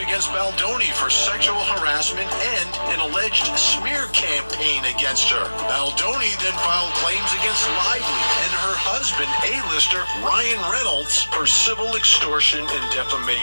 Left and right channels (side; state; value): both; inverted; correlation -1.00